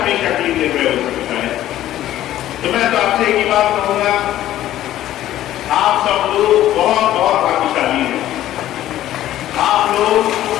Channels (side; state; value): right; quieter; 13.3 dB